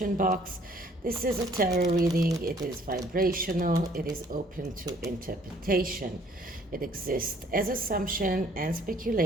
box. This is a tarot reading. It is vibrational. It is open to interpretation. It exists as assumption and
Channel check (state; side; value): normal; both; correlation 0.60